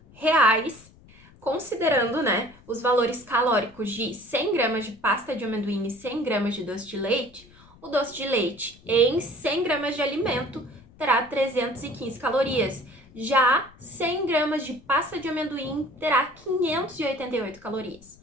reais, considerando, né, os valores calóricos de 100 gramas de pasta de amendoim e 100 gramas de doce de leite. O doce de leite em 100 gramas de alimento terá 315 calorias. Já 100 gramas de pasta de amendoim terá 588 calorias.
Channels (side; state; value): left; noise; rumble, 25 dB below the sound